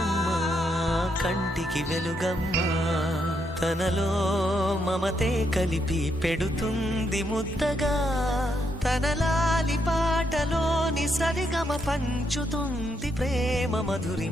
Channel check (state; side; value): normal; both; correlation 0.78